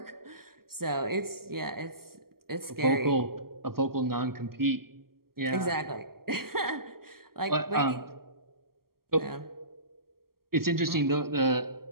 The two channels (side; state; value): left; late; 0.93 ms